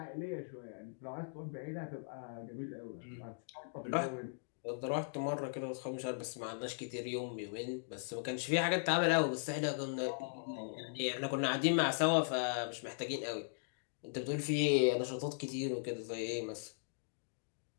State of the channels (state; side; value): silent; right; digital silence